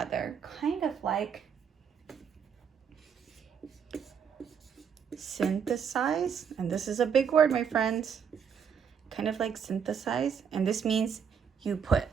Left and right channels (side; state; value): left; quieter; 7.1 dB